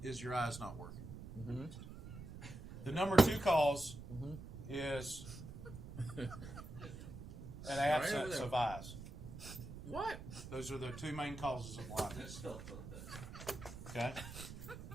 is your eyes not working. Mm-hmm. The number 2 cause is an absence of eyes. What? Those are the 2 main causes of blindness. Okay,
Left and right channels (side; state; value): right; noise; rumble, 11 dB below the sound